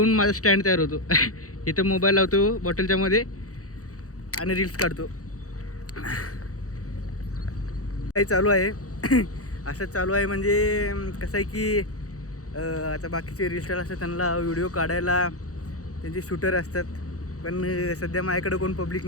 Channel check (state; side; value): late; right; 0.66 ms